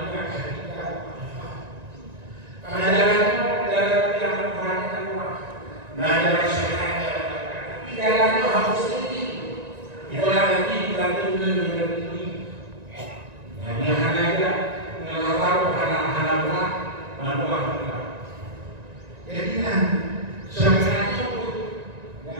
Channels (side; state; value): left; late; 1.9 ms